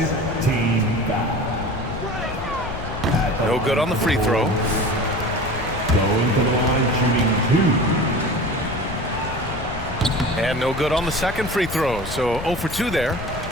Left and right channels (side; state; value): left; noise; rumble, 9 dB below the sound